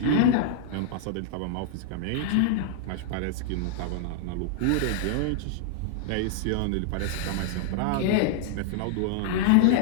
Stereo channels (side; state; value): both; different; correlation -0.01